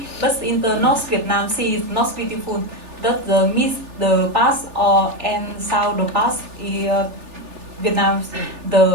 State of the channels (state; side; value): late; left; 3.4 ms